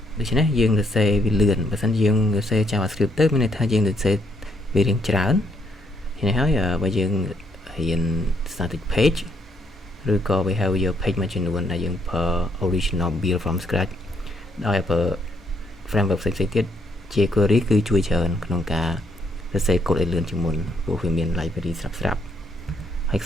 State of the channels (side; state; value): both; normal; correlation 0.72